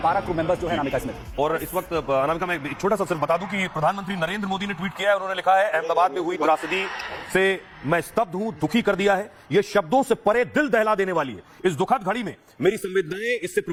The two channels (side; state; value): both; identical; correlation 1.00